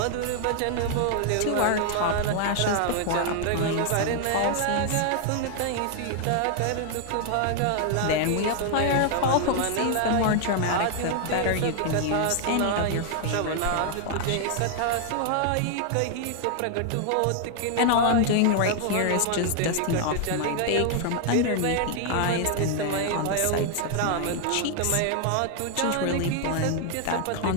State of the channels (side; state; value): both; different; correlation 0.00